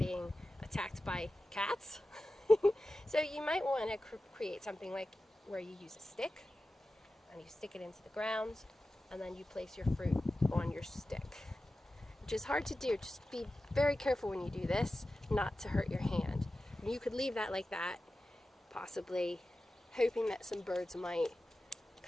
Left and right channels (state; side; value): normal; both; correlation 0.94